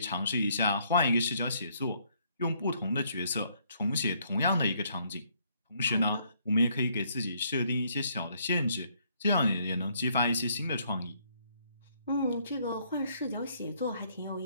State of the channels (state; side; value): inverted; both; correlation -0.68